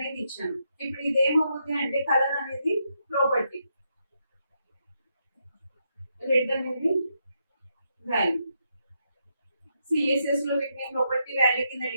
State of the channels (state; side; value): inverted; both; correlation -0.80